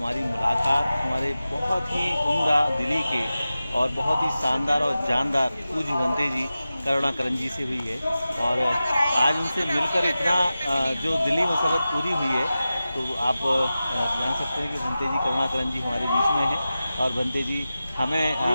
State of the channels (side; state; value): both; inverted; correlation -0.94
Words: मुलाकात हमारे बहुत ही उम्दा दिली के और बहुत ही शानदार और जानदार पूज्य भंते जी करुणाकरण जी से हुई है। और आज उनसे मिलकर इतना जो दिली मसरत पूरी हुई है, तो आप जान सकते हैं कि भंते जी करुणाकरण जी हमारे बीच में हैं और भंते जी हमें